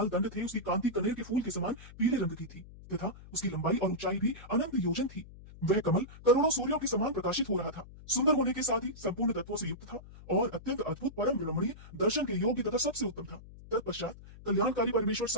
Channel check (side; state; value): left; noise; hum, 18 dB below the sound